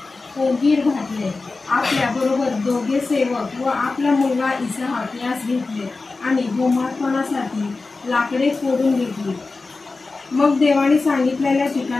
कोगीर घातले, आपल्या बरोबर 2 सेवक व आपला मुलगा इसाहक यास घेतले आणि होमार्पणासाठी लाकडे फोडून घेतली. मग देवाने सांगितलेल्या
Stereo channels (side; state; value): right; quieter; 3.7 dB